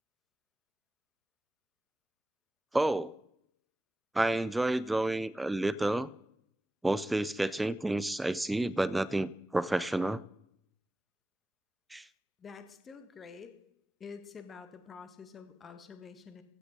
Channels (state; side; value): normal; both; correlation 0.96